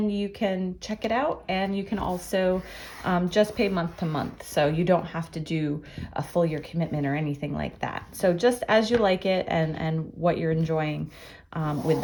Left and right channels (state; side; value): identical; both; correlation 1.00